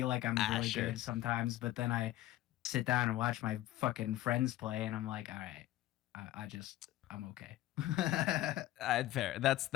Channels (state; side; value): quieter; right; 15.2 dB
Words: like I'm really good sometimes, but then I sit down and watch my fucking friends play, and I'm like, all right, I'm okay. Fair.